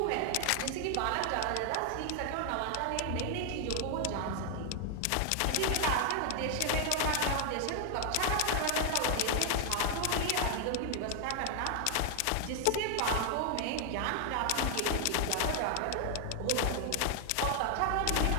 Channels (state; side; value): different; both; correlation 0.00